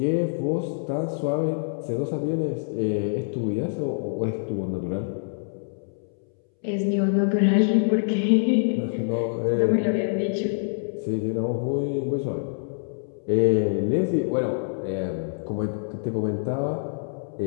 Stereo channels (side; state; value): right; silent; 61 dB below the other